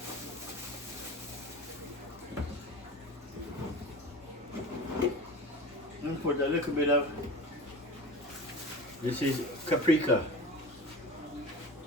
And put a little bit of, this is paprika.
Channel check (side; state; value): both; normal; correlation 0.34